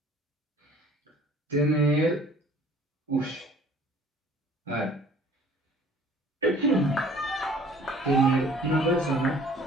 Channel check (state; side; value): normal; both; correlation 0.52